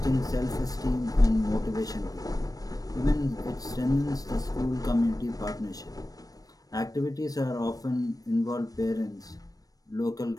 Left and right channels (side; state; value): right; late; 0.18 ms